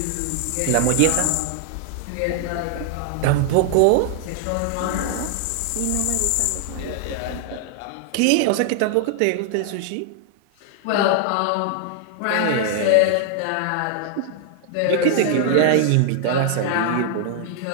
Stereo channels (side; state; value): both; different; correlation 0.00